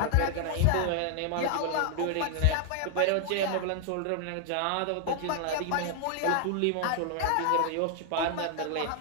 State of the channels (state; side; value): different; both; correlation 0.00